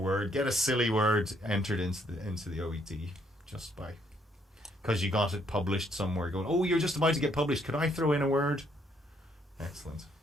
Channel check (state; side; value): normal; both; correlation 0.70